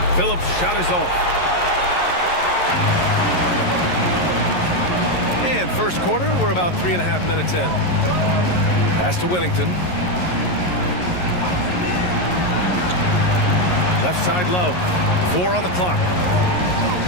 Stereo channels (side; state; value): right; late; 11 ms